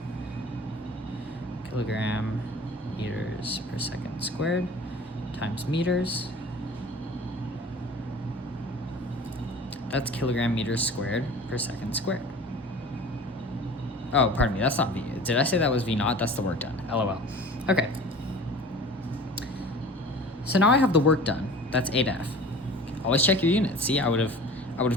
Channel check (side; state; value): both; normal; correlation 0.42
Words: kilogram meters per second squared times meters. That's kilogram meters squared per second squared. Oh, pardon me, that's not V. Did I say that was V naught? That's the work done. LOL. Okay. So now I have the work done. That's 8F. Always check your units. See, I would have